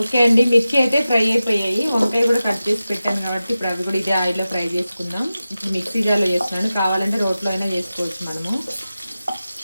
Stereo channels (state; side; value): inverted; both; correlation -0.94